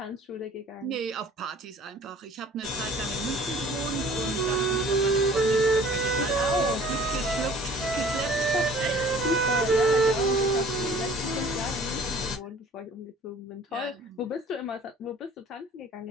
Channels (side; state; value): both; normal; correlation 0.51